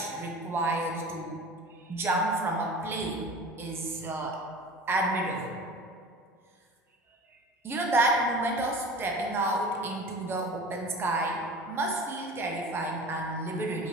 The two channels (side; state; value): both; normal; correlation 0.38